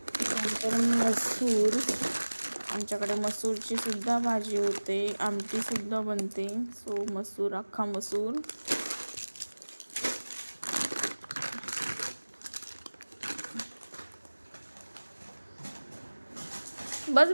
त्यानंतर मसूर, आमच्याकडे मसूरची सुद्धा भाजी होते, आमटीसुद्धा बनते, सो मसूर, अख्खा मसूर. बस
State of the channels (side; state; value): both; inverted; correlation -1.00